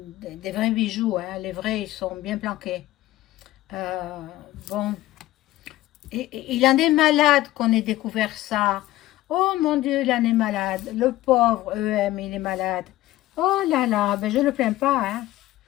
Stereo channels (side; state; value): right; quieter; 16.1 dB